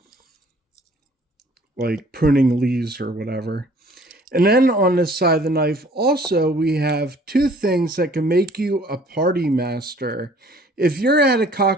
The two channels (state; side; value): normal; both; correlation 0.55